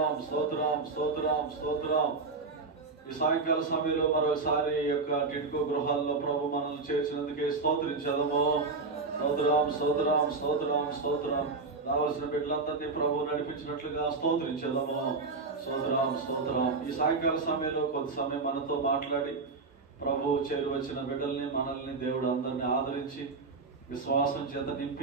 స్తోత్రం స్తోత్రం స్తోత్రం. ఈ సాయంకాల సమయంలో మరొకసారి యొక్క టిట్కో గృహాల్లో ప్రభు మనల్ని చేర్చినందుకే స్తోత్రించదము. స్తోత్రం స్తోత్రం స్తోత్రం స్తోత్రం. రావాల్సిన బిడ్డలందరినీ ప్రభు నడిపించినట్లుగా స్తోత్రించదము. స్తోత్రం స్తోత్రం. ఈ సాయంకాల సమయంలో కొంత సమయం మనతో మాట్లాడి ప్రభు చేరువచ్చిన బిడ్డల్ని మనల్ని దేవుడు అందరిని ఆదరించి విశ్వాసం చేత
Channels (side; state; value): left; quieter; 4.0 dB